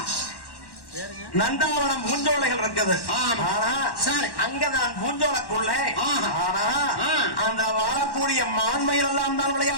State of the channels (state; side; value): late; right; 1.1 ms